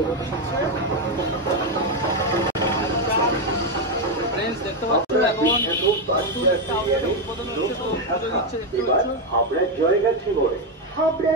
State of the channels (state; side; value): normal; both; correlation 0.06